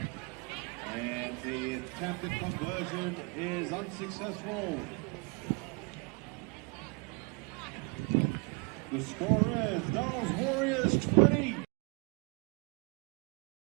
And the attempted conversion is unsuccessful. The score is Dale's Warriors 20.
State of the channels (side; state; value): left; quieter; 31.5 dB